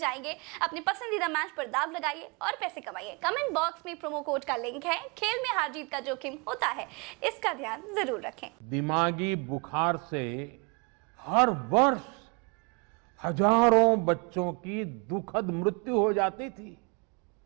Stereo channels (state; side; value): quieter; left; 31.8 dB